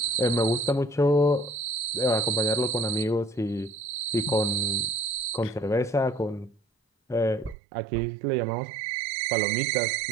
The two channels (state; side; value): drops out; left; at 7.6 s